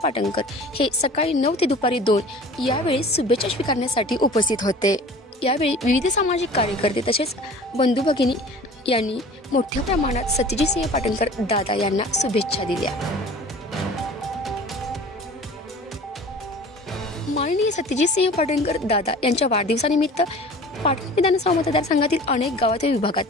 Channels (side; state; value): both; normal; correlation 0.43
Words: पाटणकर हे सकाळी 9 ते दुपारी 2 यावेळी शुभेच्छा स्वीकारण्यासाठी उपस्थित होते. यावेळी विविध सामाजिक कार्यकर्ते तसेच बंधू भगिनी यांनी मोठ्या प्रमाणात सत्यजित सिंह पाटणकर दादा यांना शुभेच्छा दिल्या. माननीय सत्यजित सिंह पाटणकर दादा यांच्या वाढदिवसानिमित्त पाटण विधानसभा मतदारसंघातील अनेक गावात व विभागात